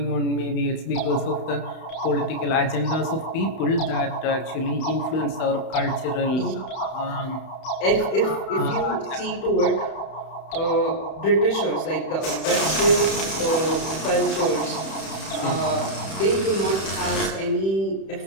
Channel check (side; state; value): right; late; 31 ms